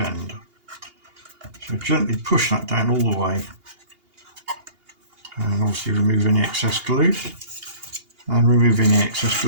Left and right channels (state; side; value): late; left; 2.8 ms